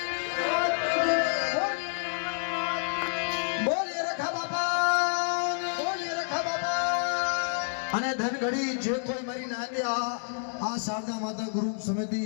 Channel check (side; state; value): right; silent; 59 dB below the other